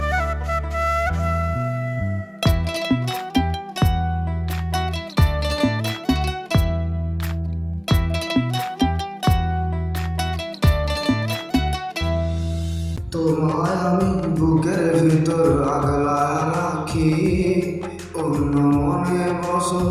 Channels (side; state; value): both; identical; correlation 1.00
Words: তোমায় আমি বুকের ভিতর আগলা রাখি, অন্য মনে